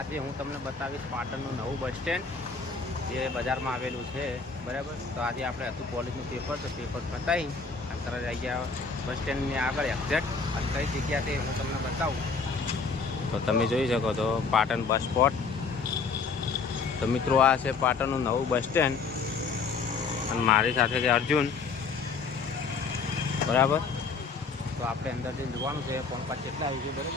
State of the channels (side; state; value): right; quieter; 4.8 dB